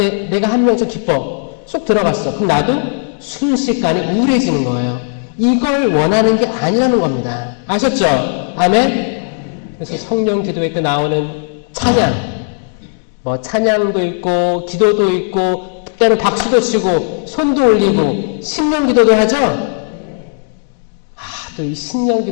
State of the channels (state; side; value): silent; right; 66 dB below the other